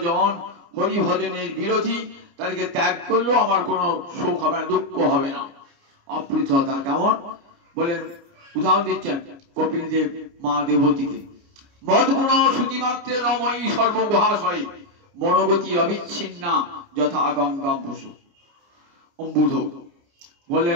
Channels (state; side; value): late; left; 29 ms